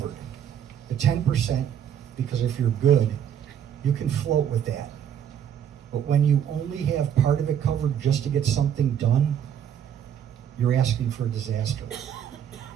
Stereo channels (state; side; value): quieter; left; 9.2 dB